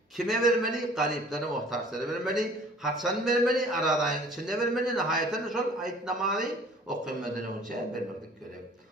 Kime vermeli? Gariplere, muhtaçlara vermeli. Haçan vermeli, aradayın içinde vermeli. Nihayeten şol ayetnamaly okuymadan önce vermeklik gerek.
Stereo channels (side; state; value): both; normal; correlation 0.51